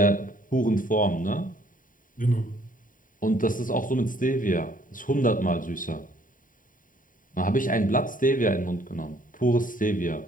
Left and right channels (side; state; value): right; late; 0.39 ms